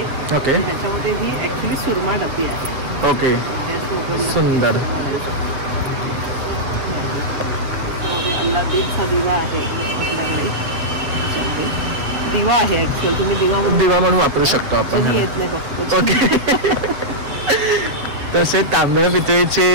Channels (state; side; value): late; left; 7.1 ms